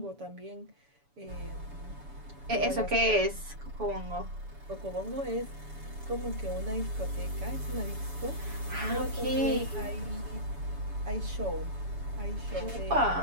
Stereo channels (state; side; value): late; left; 7.0 ms